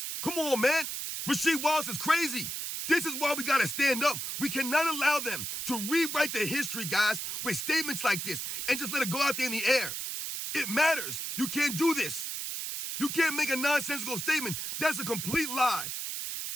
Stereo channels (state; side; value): noise; right; hiss, 4 dB below the sound